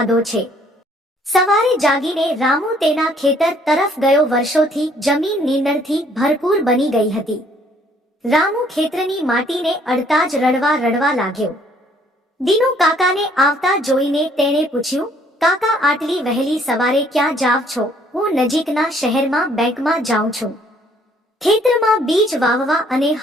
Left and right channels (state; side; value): normal; both; correlation 0.62